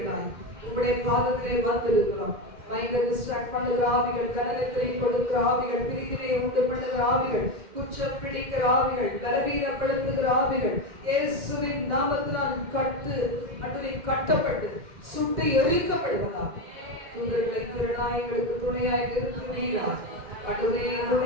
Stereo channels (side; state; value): left; late; 2.1 ms